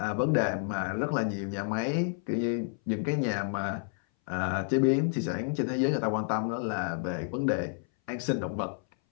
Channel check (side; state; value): right; silent; 58 dB below the other